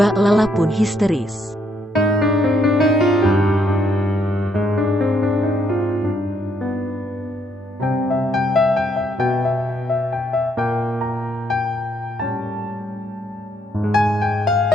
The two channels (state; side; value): normal; both; correlation 0.72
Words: Lala pun histeris.